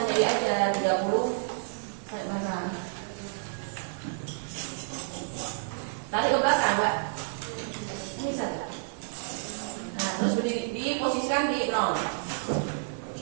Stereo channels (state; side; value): silent; left; digital silence